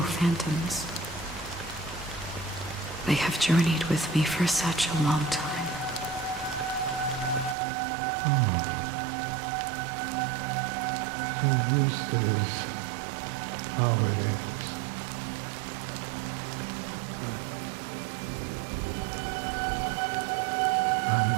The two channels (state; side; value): drops out; left; at 7.6 s